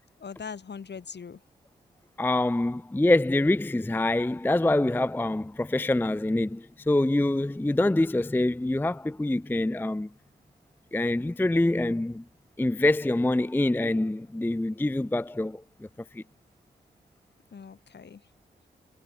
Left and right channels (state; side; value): normal; both; correlation 0.93